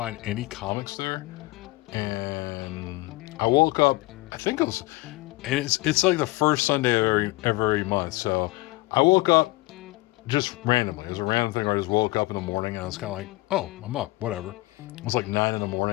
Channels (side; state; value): right; quieter; 21.3 dB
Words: any comics there, and I woke up, I think it was, and it's like the first Sunday of every month, so I woke up just randomly. It was a random thing where I just woke up in the morning and I was kind of like, oh, I'm up, whatever. It was like 9 in the